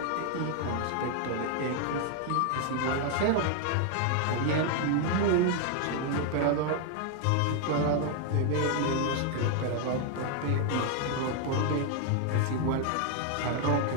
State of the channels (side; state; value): both; different; correlation 0.00